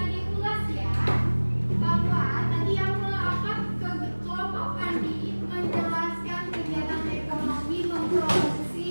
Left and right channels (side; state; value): both; inverted; correlation -1.00